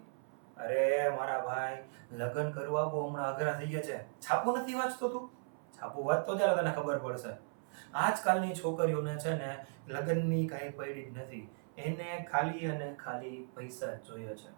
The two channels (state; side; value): silent; left; 53 dB below the other